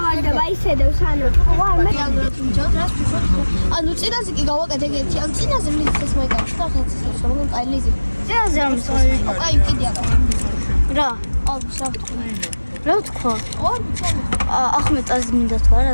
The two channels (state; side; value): inverted; both; correlation -1.00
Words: ისედევს ანუ. ანუ წინაზე კი გავაკეთე ერთი. ანუ წინაზე მიწეს მოიგავ და ხალხს ისე რომ აი ლიზი. წინაზე არ მიწეს. აი კიდე აკეთე. რა? აუ საფრთხე. რა თქვა? ახმეტას მინდა თქვა